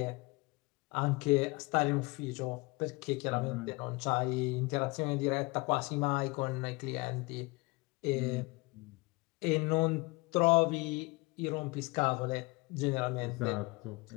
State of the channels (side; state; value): right; quieter; 25.3 dB